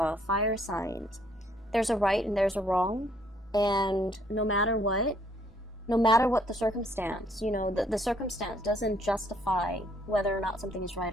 fire signs, there's a right and there's a wrong, and no matter what the circumstance, you know, the circumstance doesn't justify whether or not something is right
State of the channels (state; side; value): normal; both; correlation 0.66